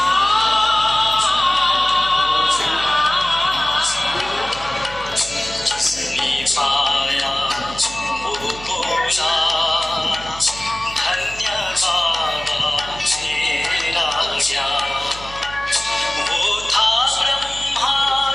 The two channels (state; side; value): noise; right; hum, 16 dB below the sound